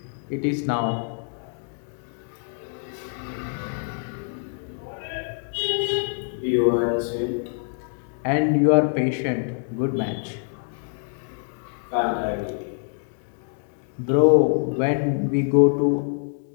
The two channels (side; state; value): right; silent; 60 dB below the other